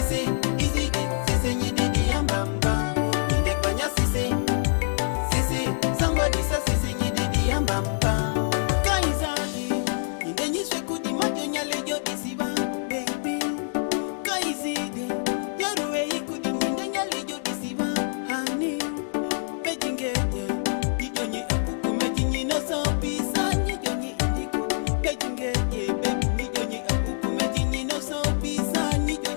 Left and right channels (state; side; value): silent; right; digital silence